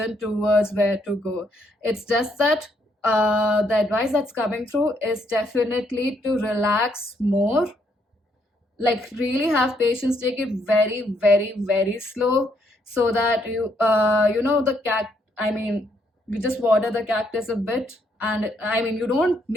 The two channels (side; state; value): both; normal; correlation 0.73